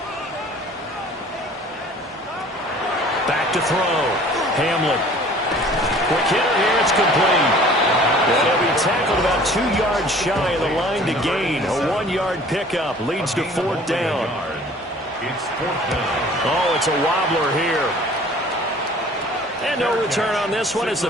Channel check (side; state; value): both; normal; correlation 0.49